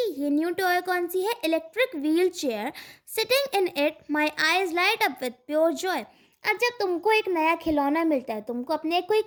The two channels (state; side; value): identical; both; correlation 1.00